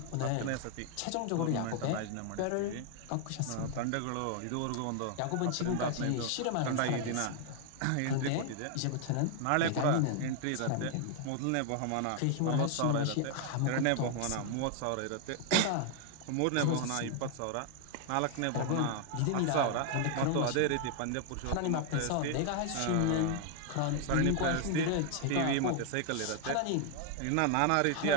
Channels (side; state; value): both; different; correlation 0.00